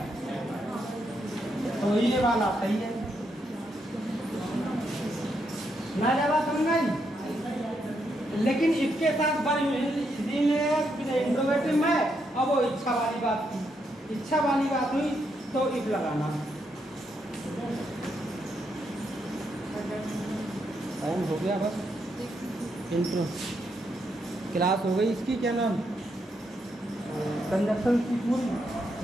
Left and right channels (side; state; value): both; normal; correlation 0.79